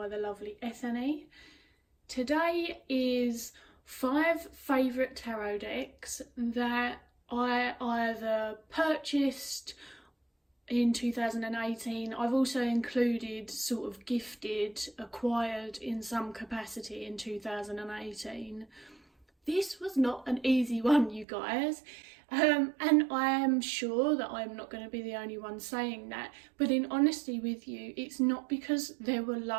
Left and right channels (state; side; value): drops out; left; at 21.2 s